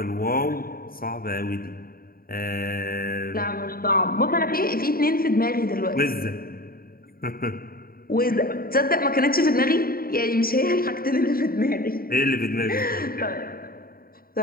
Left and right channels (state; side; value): late; right; 0.43 ms